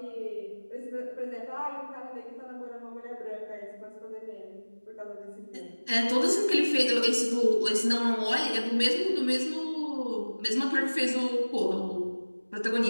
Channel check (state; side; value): inverted; both; correlation -1.00